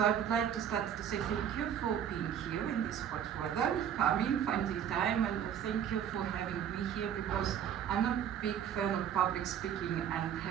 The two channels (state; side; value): quieter; left; 9.2 dB